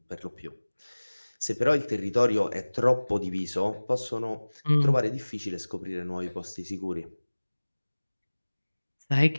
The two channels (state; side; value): inverted; both; correlation -1.00